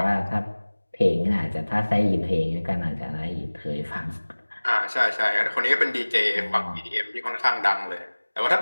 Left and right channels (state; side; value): inverted; both; correlation -1.00